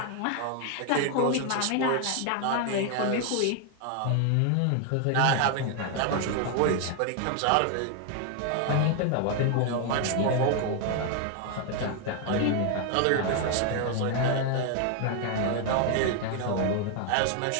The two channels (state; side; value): different; both; correlation 0.01